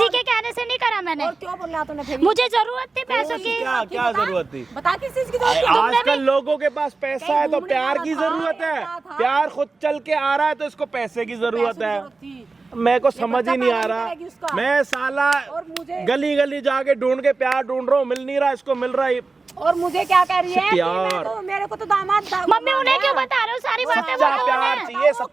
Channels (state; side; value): quieter; left; 3.8 dB